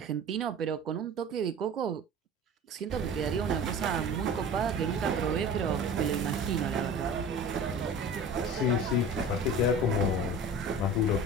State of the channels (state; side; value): normal; both; correlation 0.38